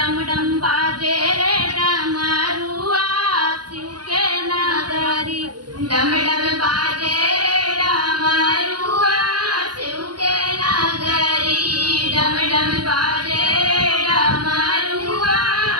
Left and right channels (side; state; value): left; late; 0.70 ms